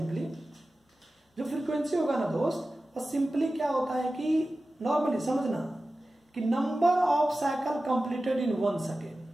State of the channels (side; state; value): both; normal; correlation 0.95